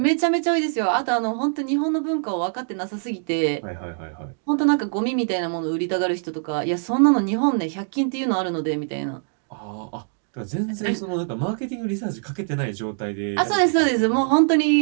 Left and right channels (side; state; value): left; silent; digital silence